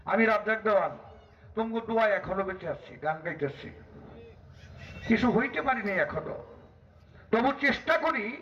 আমি রাজ্জাক দেওয়ান তোমাকে দোয়া এখনো বেঁচে আসছি, গান গাইতেছি, কিছু হইতে পারিনি এখনো। তবু চেষ্টা করি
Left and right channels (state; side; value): identical; both; correlation 1.00